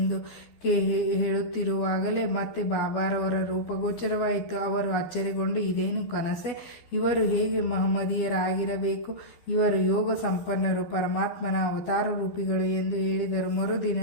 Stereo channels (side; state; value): right; late; 12 ms